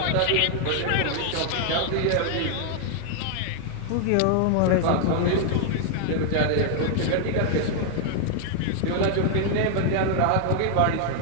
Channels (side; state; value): both; different; correlation 0.00